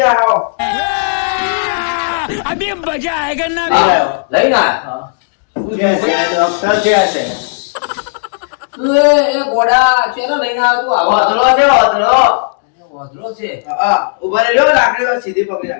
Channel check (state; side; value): silent; right; digital silence